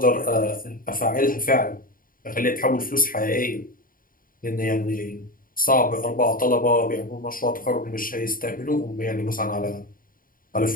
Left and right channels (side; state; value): right; late; 0.41 ms